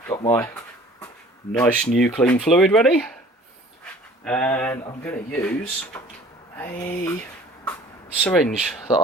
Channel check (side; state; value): both; normal; correlation 0.49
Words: Got my nice new clean fluid ready, and I'm going to use a syringe that